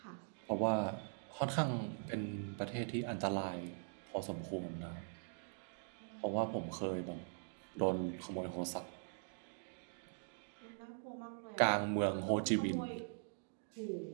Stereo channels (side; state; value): left; silent; digital silence